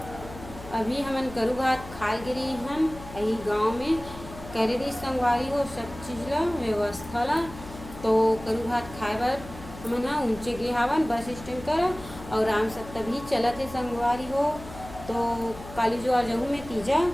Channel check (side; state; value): left; noise; hum, 15 dB below the sound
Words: अभी हमन करू भात खाए गिरी हम यही गांव में करे दी संगवारी हो सब चीज़ ला व्यवस्था ला तो करू भात खाए बर हमन हाँ ऊँचे गे हावन बस स्टैंड कर और राम सब तभी चलत है संगवारी हो तो काली जो आ जाऊँ मैं तीजा